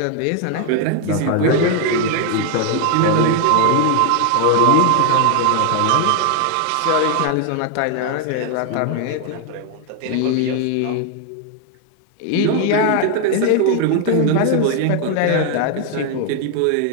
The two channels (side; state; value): both; different; correlation 0.01